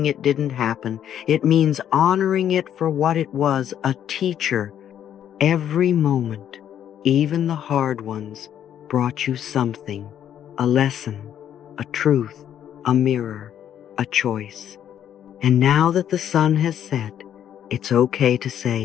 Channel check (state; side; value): quieter; right; 10.0 dB